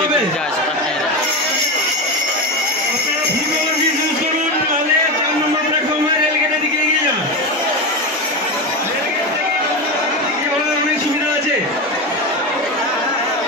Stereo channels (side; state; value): both; normal; correlation 0.18